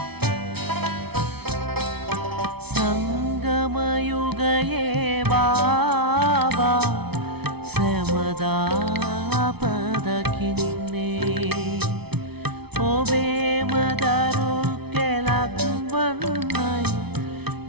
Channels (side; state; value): left; late; 0.98 ms